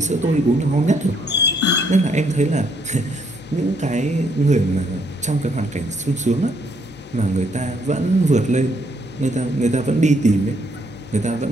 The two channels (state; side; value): normal; both; correlation 0.71